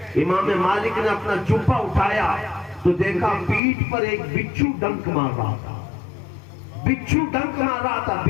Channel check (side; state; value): right; drops out; at 3.6 s